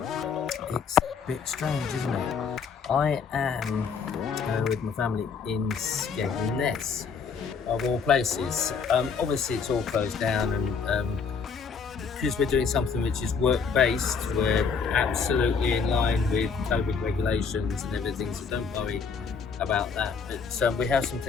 It's a bit strange, isn't it? I am with my family in Skegness, of all places. Obviously, it's all closed down, and because we're doing something which is work-based, we're absolutely in line with COVID regulations and everything, so don't worry about that. But we have some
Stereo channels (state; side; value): quieter; right; 5.7 dB